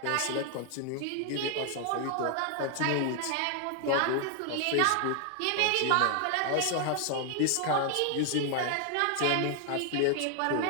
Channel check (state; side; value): different; both; correlation 0.00